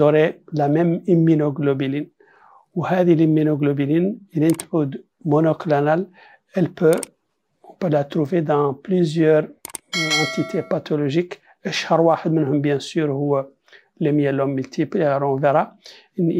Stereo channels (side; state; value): both; identical; correlation 1.00